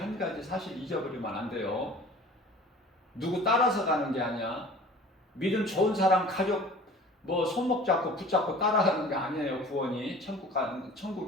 가지 사실 잊어버리면 안 돼요. 누구 따라서 가는 게 아니야. 믿음 좋은 사람 가족 뭐 손목 잡고 붙잡고 따라가는 게 아니에요. 구원이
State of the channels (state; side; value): normal; both; correlation 0.45